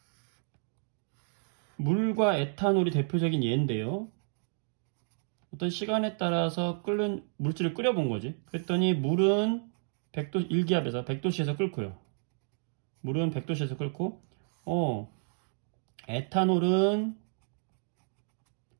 물과 에탄올이 대표적인 예인데요. 어떤 시간에 따라서 끓는 물질을 끓여본 거지. 그랬더니 물은 100도, 1기압에서 100도씨에서 끓고요. 물은 100도씨에서 끓고, 에탄올은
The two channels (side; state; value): left; silent; digital silence